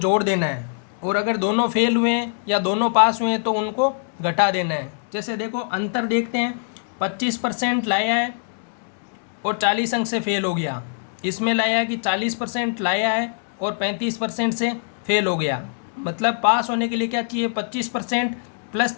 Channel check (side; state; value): right; silent; 63 dB below the other